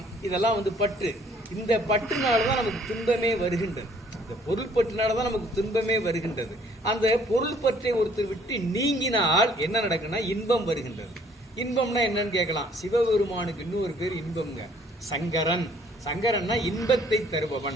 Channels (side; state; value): both; normal; correlation 0.60